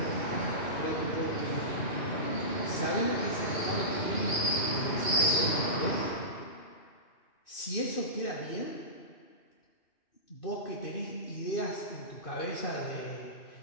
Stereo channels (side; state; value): right; late; 2.6 ms